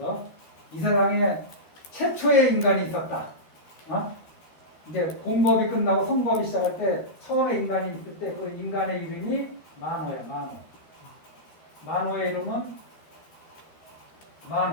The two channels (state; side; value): late; right; 13 ms